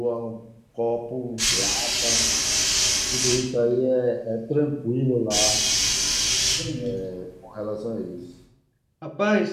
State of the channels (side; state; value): both; identical; correlation 1.00